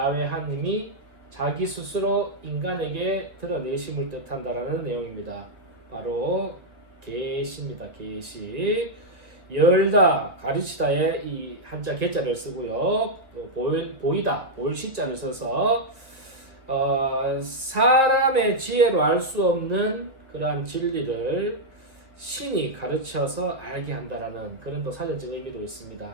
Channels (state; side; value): late; left; 1.7 ms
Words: 하나님이 자기 스스로 인간에게 드러내심을 뜻한다라는 내용입니다. 바로 계시입니다. 계시. 열다, 가르치다에 이 한자 개자를 쓰고요. 보이다, 볼 시자를 써서 사람의 지혜로 알 수 없는 그러한 진리를 신이 가르쳐서 알게 한다라는 그런 또 사전적 의미도 있습니다.